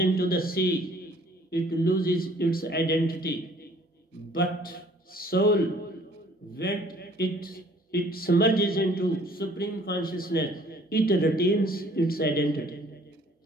the sea, it loses its identity. But soul, when it submerges into supreme consciousness, it retains its identity.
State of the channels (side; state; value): both; normal; correlation 0.57